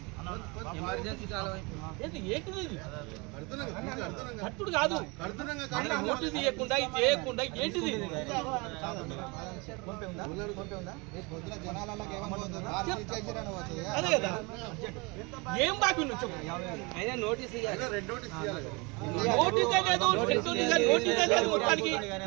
ఏంటిది కట్టుడు కాదు, నోటీస్ ఇవ్వకుండా ఇది చేయకుండా ఏంటిది? అదే కదా, ఏం బాకీ నువ్వు చెప్పు. నోటీస్ నోటీసే లేదు, మొత్తానికి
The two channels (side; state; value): left; quieter; 27.7 dB